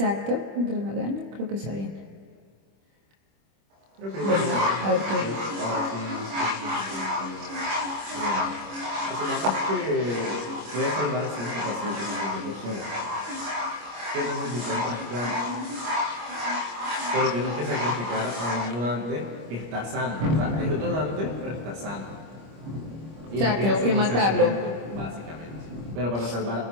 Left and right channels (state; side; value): late; left; 25 ms